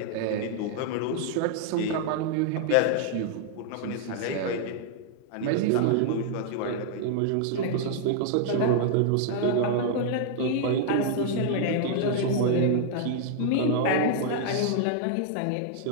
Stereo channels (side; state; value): both; different; correlation -0.01